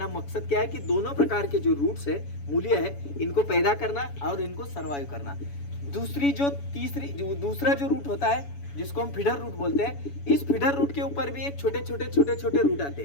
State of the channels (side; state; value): right; late; 7.1 ms